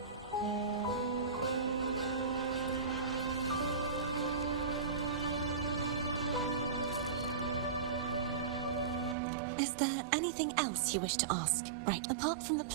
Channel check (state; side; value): drops out; left; at 9.2 s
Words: Is there anything else you wish to ask? Right. Apart from the